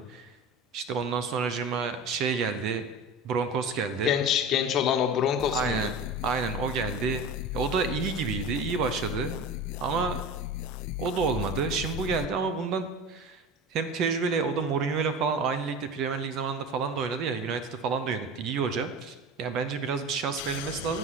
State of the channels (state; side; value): normal; both; correlation 0.32